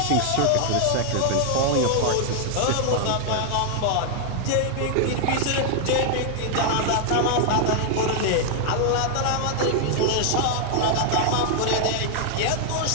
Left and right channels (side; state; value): both; different; correlation 0.00